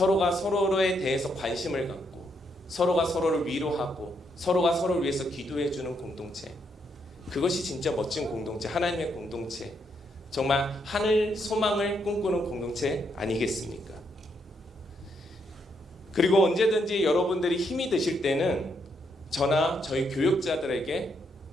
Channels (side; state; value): both; normal; correlation 0.76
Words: 서로에 대해서 관심을 갖고 서로가 서로를 위로하고 서로가 서로를 위해서 기도해주는 공동체, 그것이 진짜 멋진 공동체, 하나님의 공동체, 정말 하늘 소망을 꿈꾸는 공동체 아니겠습니까? 그리고 언제든지 여러분들이 힘이 드실 때는 저나 저희 교육자들에게